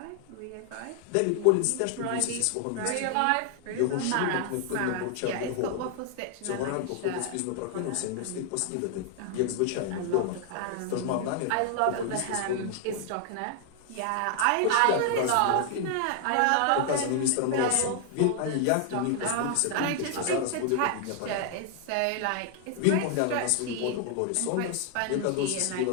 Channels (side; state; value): both; different; correlation 0.00